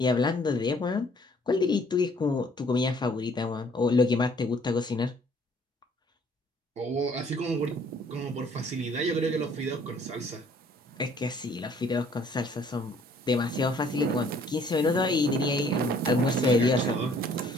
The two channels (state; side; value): normal; both; correlation 0.60